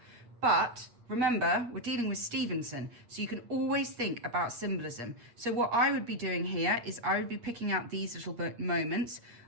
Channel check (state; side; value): late; left; 8.4 ms